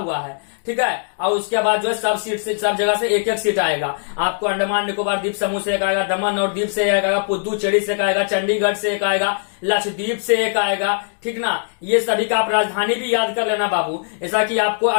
है। ठीक है, और उसके बाद जो है सब जगह से एक सीट आएगा। आपको अंडमान निकोबार द्वीप समूह से एक आएगा, दमन और दीप से एक आएगा, पुदुचेरी से एक आएगा, चंडीगढ़ से एक आएगा, लक्षद्वीप से एक आएगा। ठीक ना, ये सभी का आप राजधानी भी याद कर लेना बाबू। ऐसा कि आपको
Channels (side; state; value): right; silent; digital silence